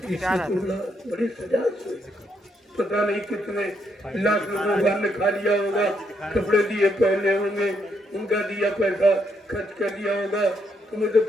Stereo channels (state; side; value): normal; both; correlation 0.76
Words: प्यार आता इसकी बड़ी सजा हुई। पता नहीं कितने लाख लोगों ने खा लिया होगा, कपड़े दिए पहने होंगे, उनका दिया पैसा खर्च कर दिया होगा, तुम्हें तो